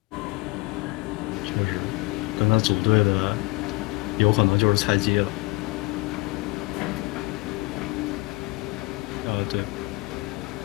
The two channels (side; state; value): right; quieter; 24.9 dB